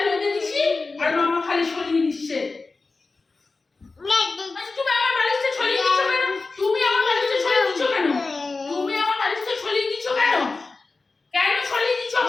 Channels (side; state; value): right; quieter; 3.8 dB